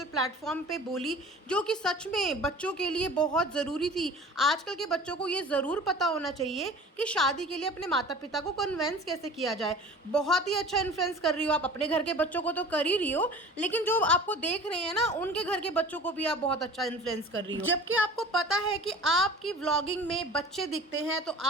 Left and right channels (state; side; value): normal; both; correlation 0.42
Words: प्लेटफॉर्म पे बोली जो कि सच में बच्चों के लिए बहुत ज़रूरी थी। आजकल के बच्चों को ये ज़रूर पता होना चाहिए कि शादी के लिए अपने माता पिता को कन्विंस कैसे किया जाए। बहुत ही अच्छा इन्फ्लुएंस कर रही हो आप, अपने घर के बच्चों को तो कर ही रही हो, लेकिन जो आपको देख रहे हैं ना उनके घर के बच्चों को भी आप बहुत अच्छा इन्फ्लुएंस कर रही हो। जबकि आपको पता है कि आपकी व्लॉगिंग में बच्चे दिखते हैं, तो